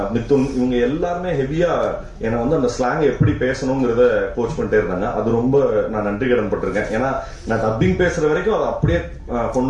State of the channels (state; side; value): identical; both; correlation 1.00